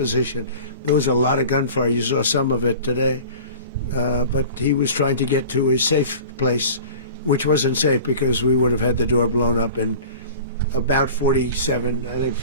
There was a lot of gunfire. You saw some of it today. But he was trying to get to a safe place, which wasn't safe because we would have had the door blown up in about 47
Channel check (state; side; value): inverted; both; correlation -0.39